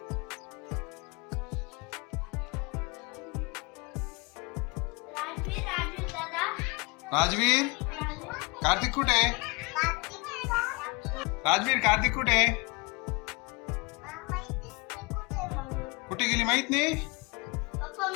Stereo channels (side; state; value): right; quieter; 26.5 dB